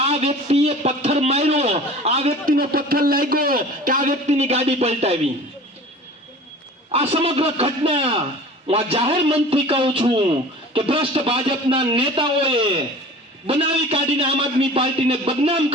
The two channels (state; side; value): normal; both; correlation 0.42